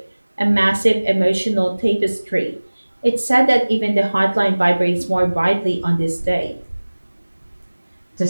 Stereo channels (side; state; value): both; inverted; correlation -1.00